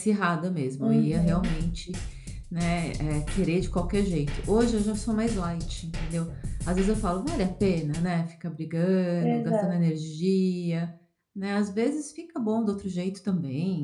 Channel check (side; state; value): both; identical; correlation 1.00